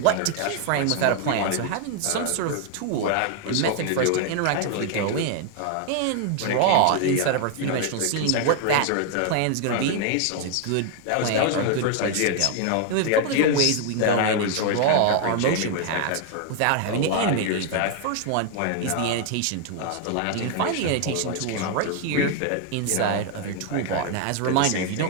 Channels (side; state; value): both; different; correlation 0.00